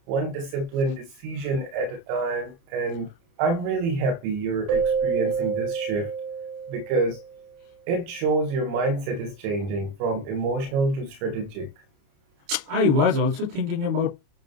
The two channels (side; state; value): left; late; 29 ms